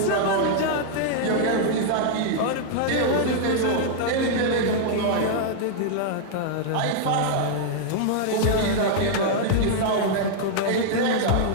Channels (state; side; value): different; both; correlation -0.01